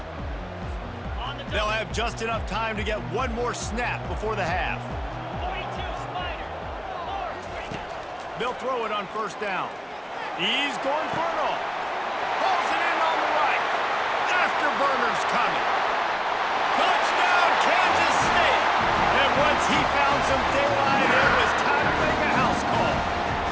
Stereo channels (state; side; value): identical; both; correlation 1.00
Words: They'll have just enough time to get one more snap before the half. They'll throw it on first down. He's going for it all. Pulls it in on the right. Afterburner's coming. Touchdown, Kansas State. And once he found some daylight, it was time to make a house call.